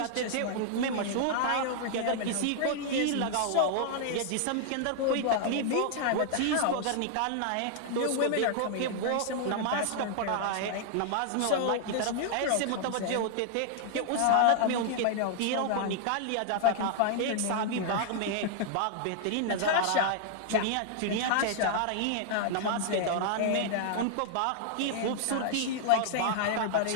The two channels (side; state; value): both; different; correlation -0.01